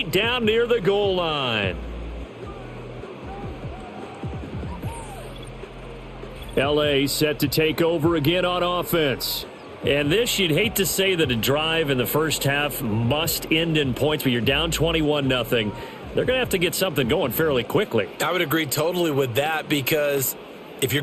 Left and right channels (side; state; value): both; identical; correlation 1.00